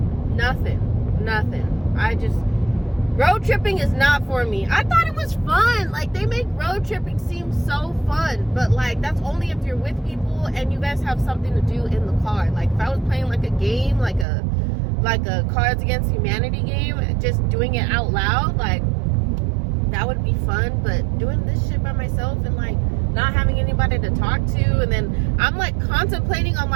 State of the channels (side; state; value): left; drops out; at 14.2 s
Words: nothing. Road tripping is not for me. I thought it was fun. Like, they make road tripping seem so fun, but like, that's only if you're with people and you guys have something to do in the car. Like, if I was playing like a game, like a Cards Against Humanity game, just doing it out loud, like, that would be fun. But doing this shit by myself and like not having anybody to talk to, and then I'm like contemplating on